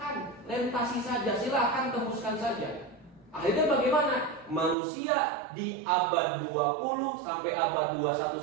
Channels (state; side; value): drops out; left; at 4.8 s